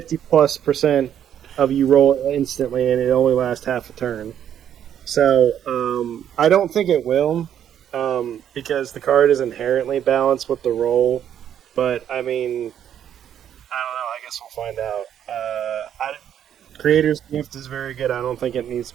of you roll instantly and it only lasts half a turn. So, I don't think it will, because the card is inherently balanced with the roll. But, I mean, I don't know. I guess we'll find out. Creator's Gift is very good. I don't think it needs to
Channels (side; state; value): left; quieter; 9.7 dB